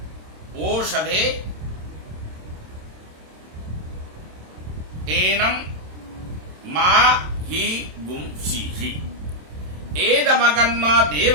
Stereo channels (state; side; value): late; left; 27 ms